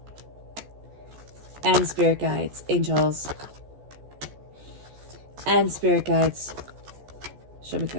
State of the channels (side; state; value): left; late; 14 ms